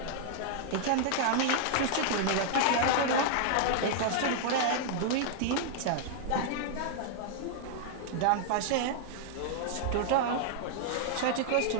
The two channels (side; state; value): both; different; correlation -0.01